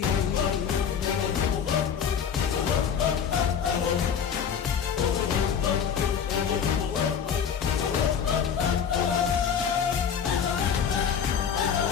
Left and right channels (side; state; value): right; quieter; 7.5 dB